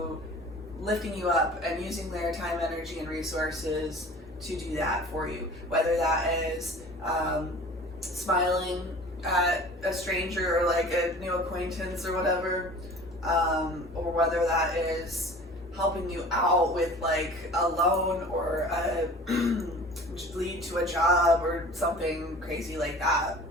lifting you up and using their time, energy, and resources to do that for you. Whether that is smiling at a stranger or like a new acquaintance or whatever, or whether that is helping you out with like a loan or a lead to a job or something crazy like that.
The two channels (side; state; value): both; normal; correlation 0.43